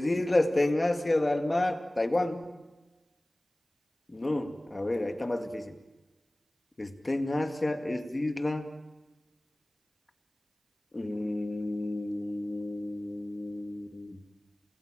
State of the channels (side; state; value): both; normal; correlation 0.98